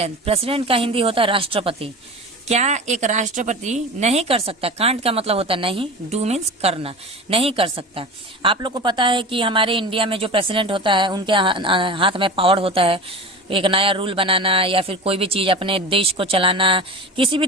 का हिंदी होता है राष्ट्रपति। क्या एक राष्ट्रपति नहीं कर सकता। कांट का मतलब होता है नहीं, डू मीन्स करना, नहीं कर सकता। आप लोग को पता है कि हमारे इंडिया में जो प्रेसिडेंट होता है उनके हाथ में पावर होता है एक नया रूल बनाना या फिर कोई भी चीज़ अपने देश को चलाना, किसी भी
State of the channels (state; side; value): normal; both; correlation 0.32